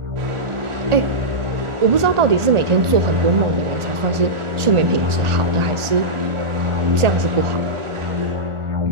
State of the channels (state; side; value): late; left; 1.8 ms